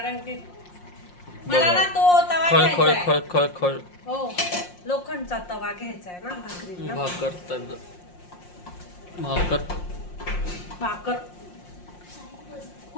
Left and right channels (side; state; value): right; late; 5.6 ms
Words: की मला ना तो तवा खळ खळ घ्यायचा खळ खळ खळ. हो लोखंडचा तवा घ्यायचा आहे ना भाकरीला. भाकर भाकर